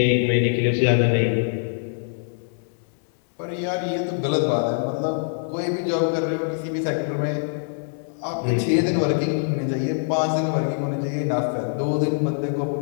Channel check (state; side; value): silent; right; digital silence